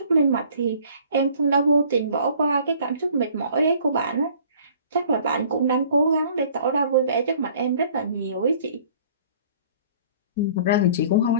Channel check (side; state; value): both; inverted; correlation -0.53